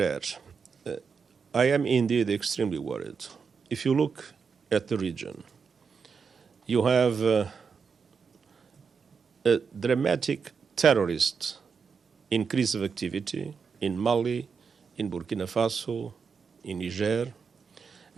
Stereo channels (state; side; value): quieter; left; 5.8 dB